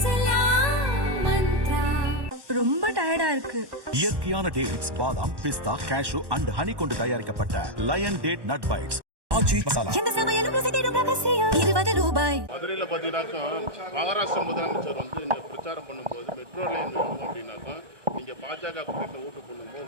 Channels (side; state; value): left; late; 1.1 ms